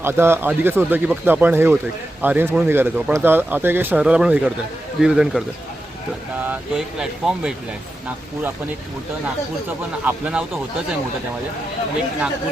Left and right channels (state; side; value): normal; both; correlation 0.90